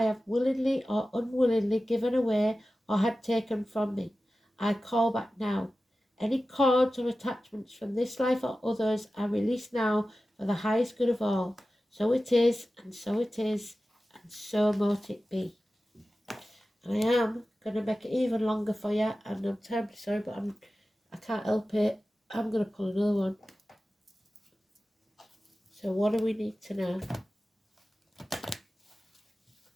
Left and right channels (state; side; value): normal; both; correlation 0.95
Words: have willingly or unwillingly given away or had taken from me. I call back now. Any cords or attachments from this life or others are released now for the highest good of all. So it is, and so it is, and so mote it be. And I am going to make it even longer for you, and I'm terribly sorry, but I can't help it. I'm going to pull another one. So what do we need to know?